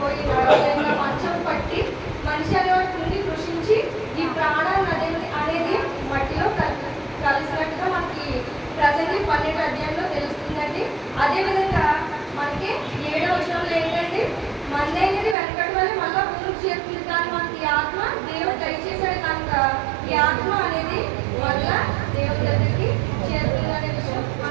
నడవలేక మంచం పట్టి మనిషి అనేవాడు కృంగి కృషించి ఈ ప్రాణాన్ని అనేది మట్టిలో కలిసినట్టుగా మనకి ప్రసంగి 12వ అధ్యాయంలో తెలుస్తుందండి. అదేవిధంగా మనకి 7వ వచనంలో ఏంటంటే మన్నైనది వెనకటి వల్ల మళ్ళా భూమికి చేరుతుంది. కానీ మనకి ఈ ఆత్మ దేవుడు దయచేశాడు కనుక ఈ ఆత్మ అనేది మళ్ళా దేవుడి దగ్గరికి చేరుతుంది అనే విషయం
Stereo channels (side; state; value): left; drops out; at 15.4 s